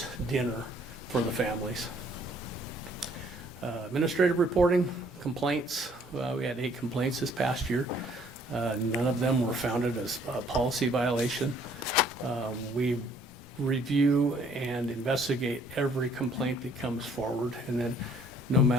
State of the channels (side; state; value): both; normal; correlation 0.61